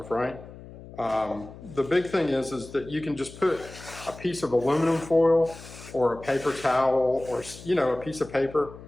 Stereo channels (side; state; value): left; noise; hum, 16 dB below the sound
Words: right? The big thing is that you can just put a piece of aluminum foil or a paper towel or, you know, a piece of paper